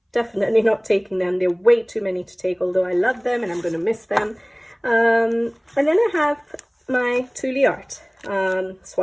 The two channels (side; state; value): both; identical; correlation 1.00